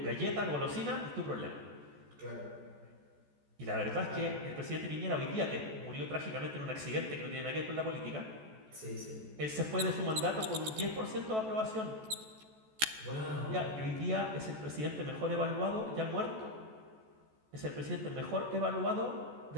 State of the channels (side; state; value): left; late; 14 ms